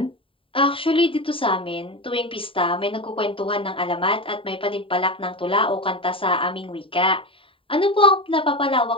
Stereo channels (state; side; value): late; right; 0.26 ms